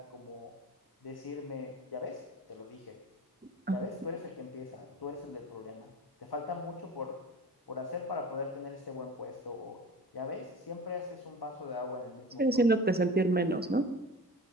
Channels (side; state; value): both; normal; correlation 0.37